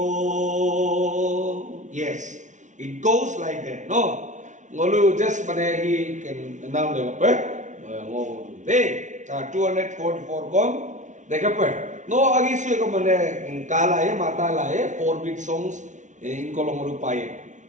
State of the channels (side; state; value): left; late; 0.36 ms